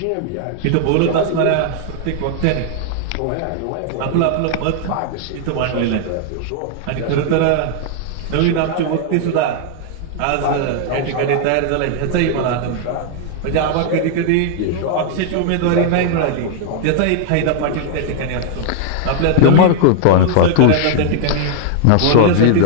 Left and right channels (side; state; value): both; different; correlation 0.00